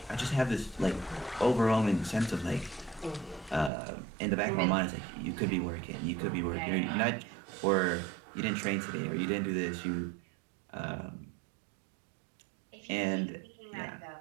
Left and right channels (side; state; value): left; drops out; at 3.7 s